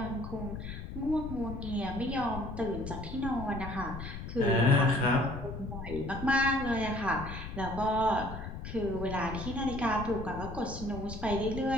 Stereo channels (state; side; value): noise; left; rumble, 8 dB below the sound